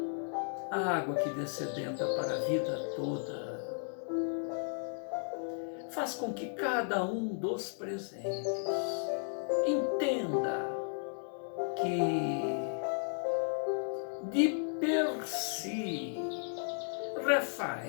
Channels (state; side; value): silent; right; 55 dB below the other